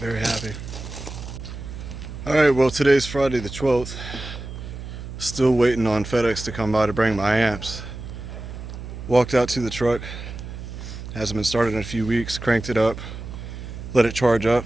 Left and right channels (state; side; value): noise; right; hum, 10 dB below the sound